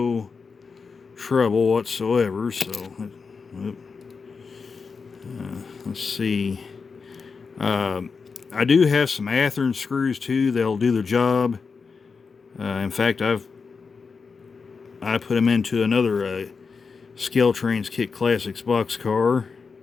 trouble whatsoever. So let's see. I do have some Athearn screws too. They'll do the job. In fact, I put them into another Scaletrains Kit Classics box car,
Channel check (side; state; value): right; quieter; 5.1 dB